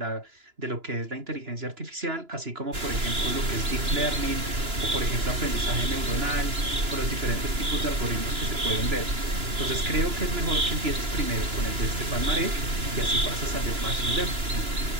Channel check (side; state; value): left; late; 2.9 ms